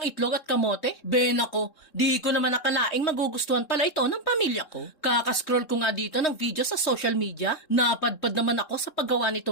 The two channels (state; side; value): late; right; 3.7 ms